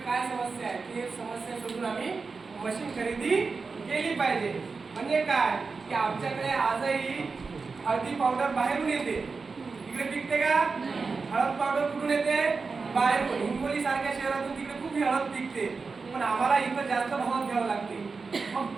काय समस्या आहे. ती समस्या शोधून आम्ही मशीन खरेदी केली पाहिजे. म्हणजे काय की आमच्याकडे आजही हळदी पावडर बाहेरून येते, इकडे पिकते का? हळद पावडर कुठून येते? बाहेरून. हिंगोली सारख्या शहरातून तिकडे खूप हळद पिकते, पण आम्हाला इथं जास्त भावात घ्यावं लागते. मग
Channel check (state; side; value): quieter; left; 4.5 dB